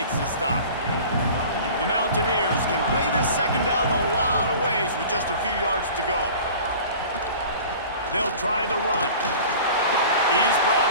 the stop. The Mountaineers can play this second down a lot of ways with just a few yards to go. They'll try the run. He's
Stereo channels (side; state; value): both; inverted; correlation -0.42